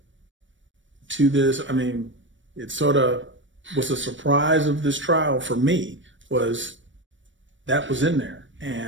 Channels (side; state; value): left; late; 0.55 ms